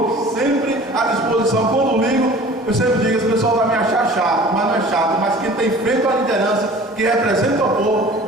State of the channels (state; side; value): normal; both; correlation 0.45